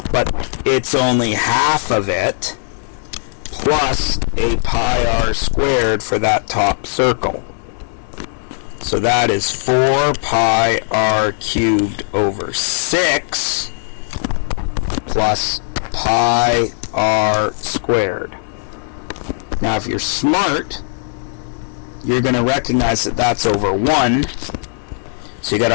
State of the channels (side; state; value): right; silent; 67 dB below the other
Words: but it's only half of it, plus a pi r squared for that top circle. So that is 4 pi r cubed over 6 plus pi r squared. Now if you're smart, you're going to recognize that that's over 1. So you got